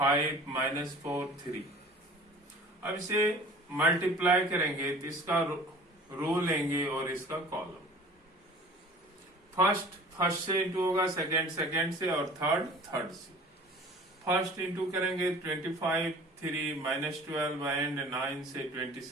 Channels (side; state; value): both; normal; correlation 0.45